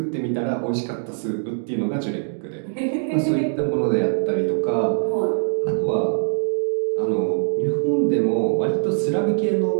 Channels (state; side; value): silent; left; digital silence